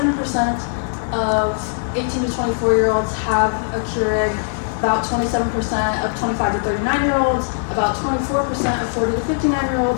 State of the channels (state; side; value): silent; right; digital silence